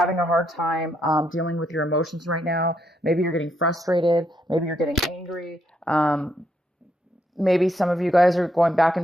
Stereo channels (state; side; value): normal; both; correlation 0.76